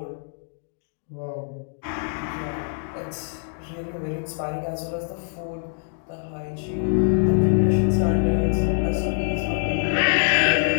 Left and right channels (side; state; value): right; silent; 62 dB below the other